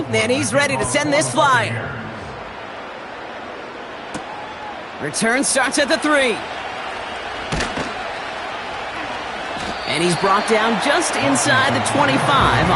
and he's ready to send this flyer. Return starts at the 3. And he's brought down just inside the 25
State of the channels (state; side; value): identical; both; correlation 1.00